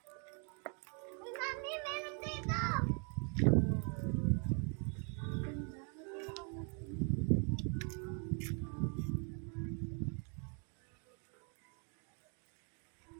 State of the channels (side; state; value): left; quieter; 39.0 dB